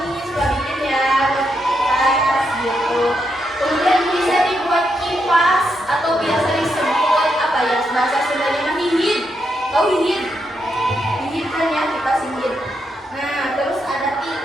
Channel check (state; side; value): normal; both; correlation 0.81